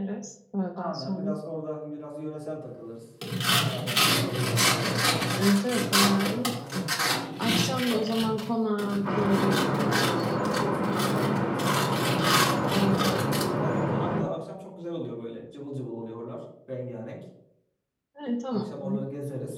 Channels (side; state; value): both; identical; correlation 1.00